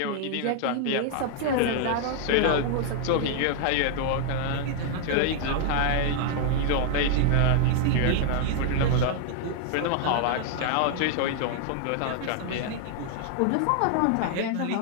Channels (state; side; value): different; both; correlation -0.01